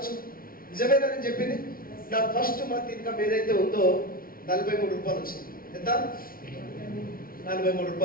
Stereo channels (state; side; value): late; right; 0.42 ms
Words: నిజమేనా నేను చెప్పింది? నా ఫస్ట్ మంత్ ఇన్కమ్ ఏదైతే ఉందో 43 రూపాయలు వచ్చింది. ఎంత? 43